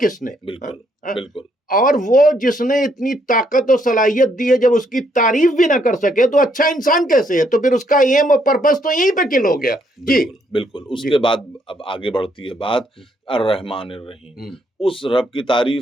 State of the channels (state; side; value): normal; both; correlation 0.72